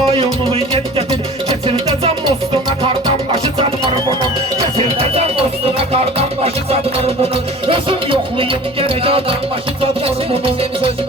yet gətir. Keçirdəcəm mostuna qardan başı çatmır bunun. Keçirdəcəm mostuna qardan başı çatmır bunun. Özüm yoxlayım gərək yardan başı çatmır Kesir bunun. bizim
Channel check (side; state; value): both; normal; correlation 0.42